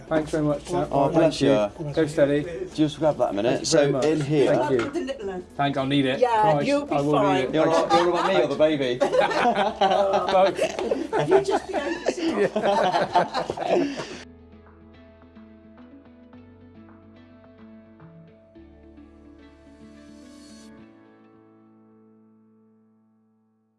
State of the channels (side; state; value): both; identical; correlation 1.00